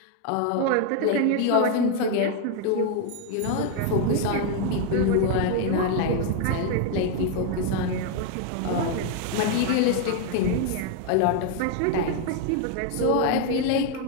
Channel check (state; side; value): different; both; correlation 0.01